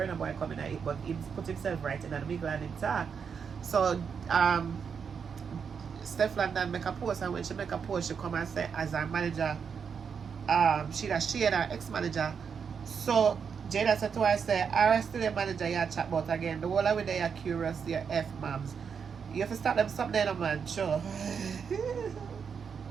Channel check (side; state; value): left; quieter; 6.5 dB